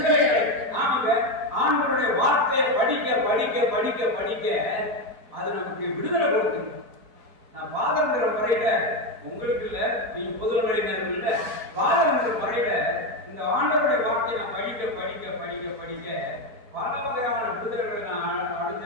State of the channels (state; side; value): late; left; 4.4 ms